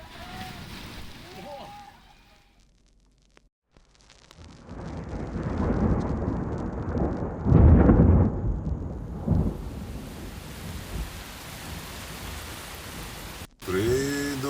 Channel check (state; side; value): identical; both; correlation 1.00